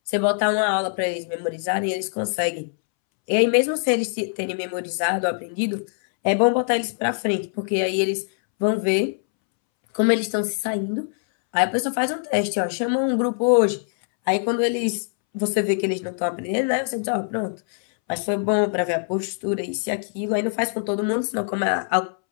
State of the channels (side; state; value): right; silent; 63 dB below the other